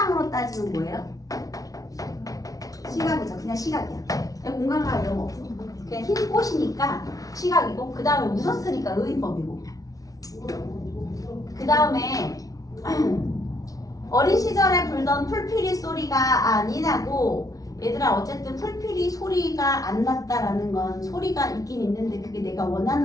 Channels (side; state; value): right; late; 0.18 ms